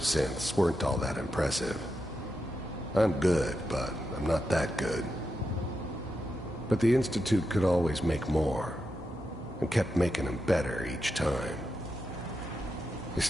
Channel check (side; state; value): both; normal; correlation 0.87